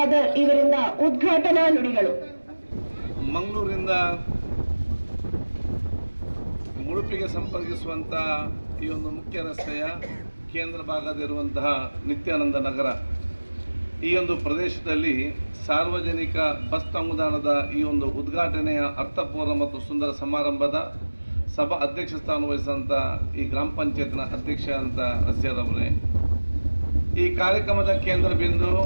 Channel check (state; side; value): inverted; both; correlation -1.00